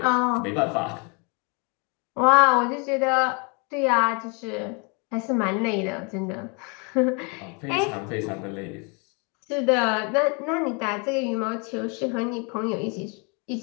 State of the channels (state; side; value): quieter; right; 33.5 dB